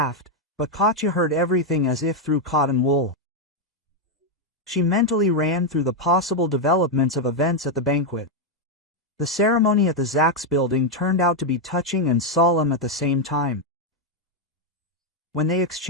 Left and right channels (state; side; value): normal; both; correlation 0.02